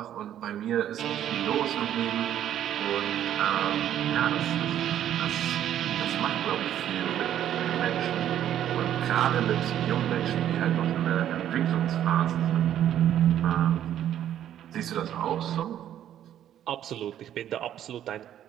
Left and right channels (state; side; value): quieter; left; 11.0 dB